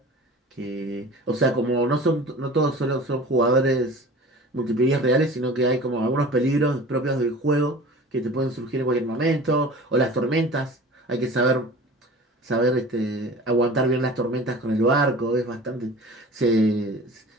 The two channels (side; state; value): both; normal; correlation 0.40